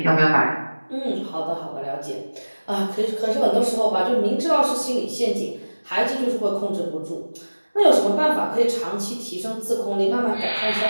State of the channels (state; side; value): inverted; both; correlation -1.00